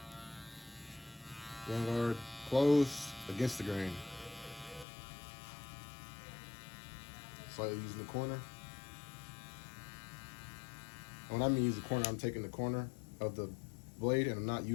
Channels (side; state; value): right; drops out; at 4.9 s